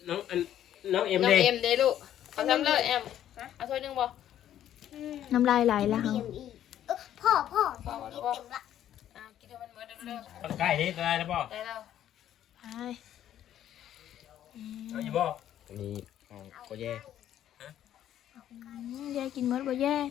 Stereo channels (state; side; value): quieter; right; 11.2 dB